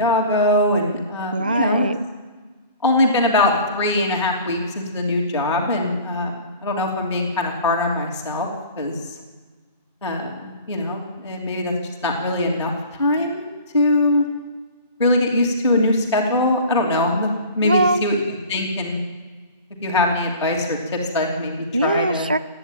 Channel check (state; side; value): inverted; both; correlation -0.43